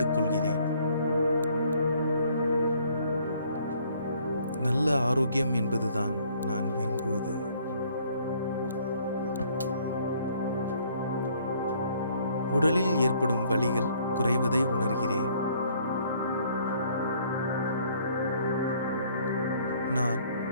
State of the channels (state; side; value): inverted; both; correlation -0.61